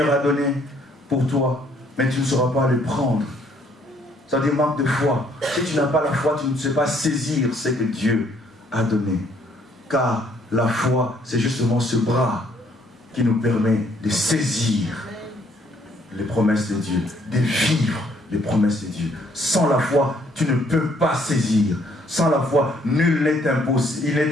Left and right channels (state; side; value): normal; both; correlation 0.65